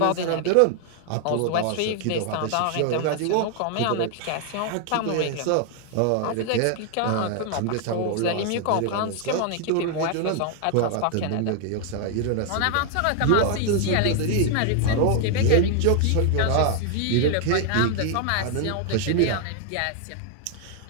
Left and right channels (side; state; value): both; different; correlation 0.00